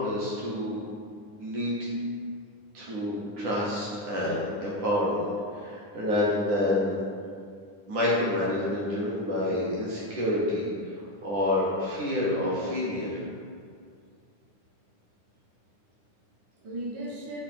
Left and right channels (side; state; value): left; late; 9.8 ms